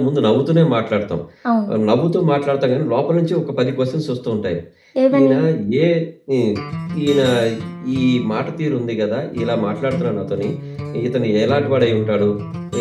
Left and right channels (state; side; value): identical; both; correlation 1.00